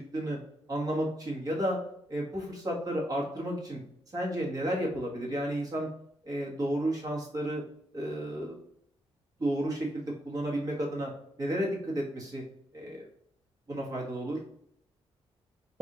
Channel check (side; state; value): both; normal; correlation 0.80